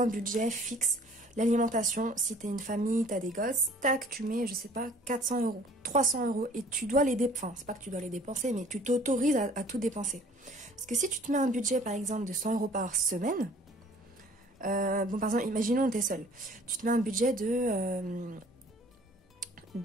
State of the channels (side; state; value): both; normal; correlation 0.53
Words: un budget fixe. L'alimentation, si t'es une famille, t'as des gosses, tac, tu mets, je sais pas, 400 euros, 300 euros. Et tu dois les dépenser. Enfin, c'est pas que tu dois les dépenser, mais tu t'autorises à tout dépenser. Parce que si tu te mets un budget, par exemple, de 100 euros par semaine, par exemple, imaginons que t'es seul. Tu te mets un budget